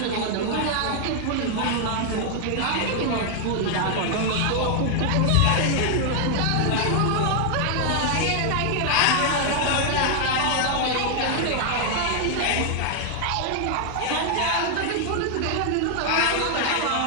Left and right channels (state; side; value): different; both; correlation 0.00